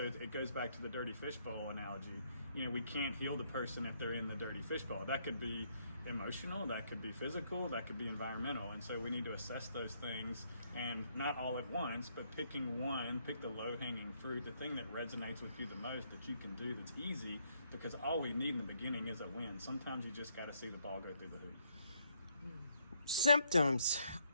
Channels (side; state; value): both; inverted; correlation -0.72